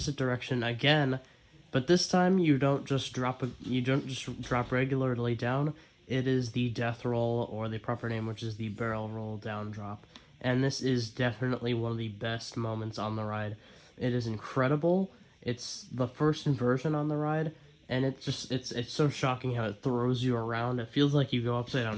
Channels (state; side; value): identical; both; correlation 1.00